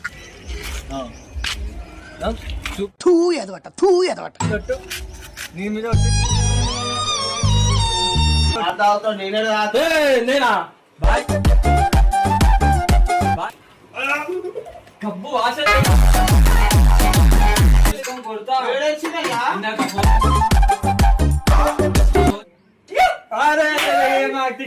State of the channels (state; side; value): identical; both; correlation 1.00